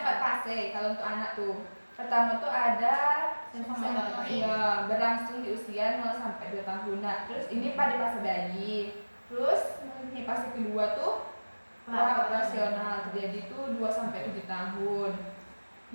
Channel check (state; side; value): inverted; both; correlation -1.00